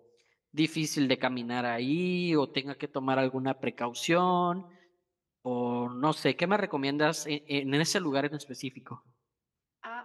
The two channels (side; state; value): both; identical; correlation 1.00